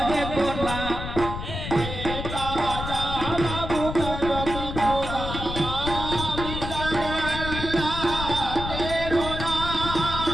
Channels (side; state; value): left; noise; rumble, 6 dB below the sound